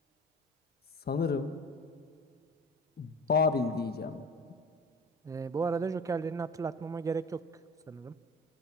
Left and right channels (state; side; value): normal; both; correlation 0.38